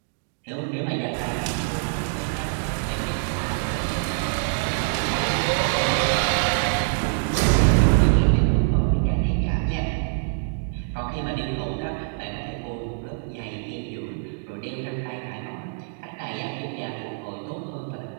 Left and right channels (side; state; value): left; silent; digital silence